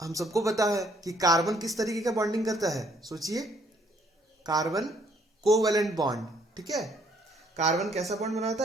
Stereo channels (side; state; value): both; normal; correlation 0.66